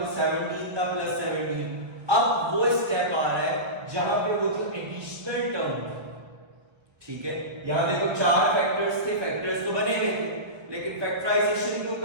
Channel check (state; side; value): late; left; 1.6 ms